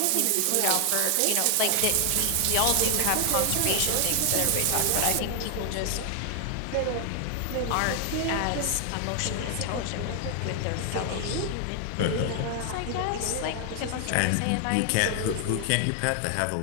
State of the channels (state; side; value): different; both; correlation 0.00